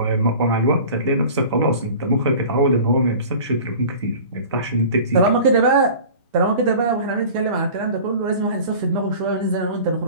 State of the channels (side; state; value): both; inverted; correlation -0.41